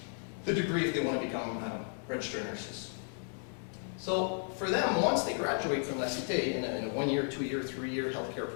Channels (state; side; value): silent; right; 55 dB below the other